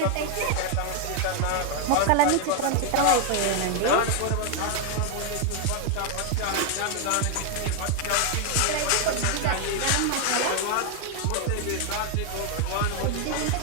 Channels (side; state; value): both; different; correlation 0.00